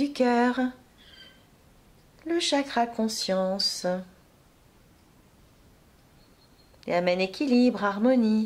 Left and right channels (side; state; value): both; identical; correlation 1.00